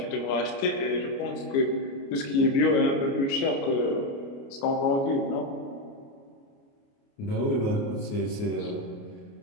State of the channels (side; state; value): right; late; 29 ms